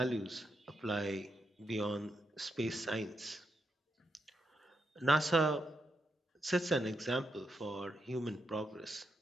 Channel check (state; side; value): normal; both; correlation 0.82